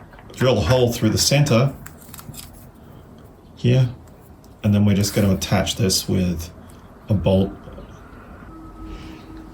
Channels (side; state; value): both; identical; correlation 1.00